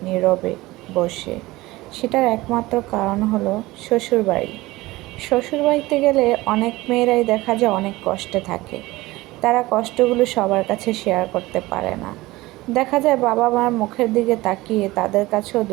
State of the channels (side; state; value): left; quieter; 19.4 dB